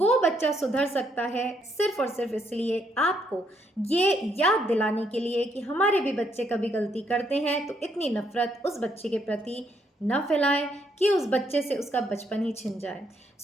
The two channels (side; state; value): both; normal; correlation 0.73